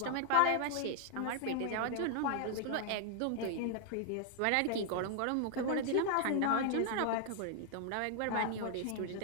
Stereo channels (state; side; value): different; both; correlation 0.00